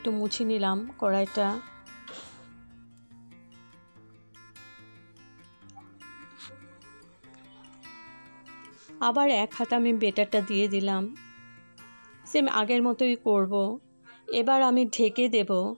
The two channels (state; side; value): inverted; both; correlation -1.00